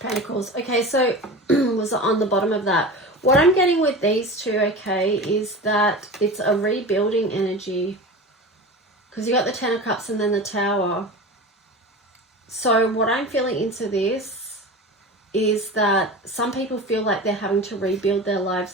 Okay, so was on the bottom of that. What I'm getting with these two, okay, is that it's a rebuilding energy. Because you got the Ten of Cups and then the Tower. So what I'm feeling into this is that some people feel like they're having to rebuild their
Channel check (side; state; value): both; normal; correlation 0.31